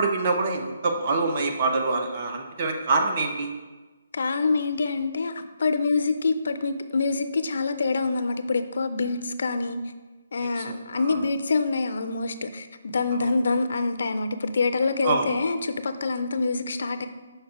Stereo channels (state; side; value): inverted; both; correlation -0.78